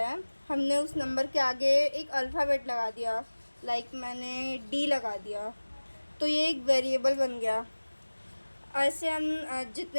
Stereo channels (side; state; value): both; inverted; correlation -1.00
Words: हमने उस नंबर के आगे एक अल्फ़ाबेट लगा दिया, लाइक मैंने डी लगा दिया, तो ये एक वेरिएबल बन गया। ऐसे हम